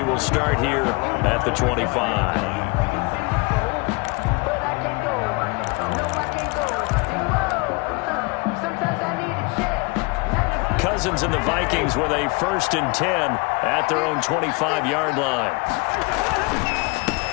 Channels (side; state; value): right; quieter; 28.5 dB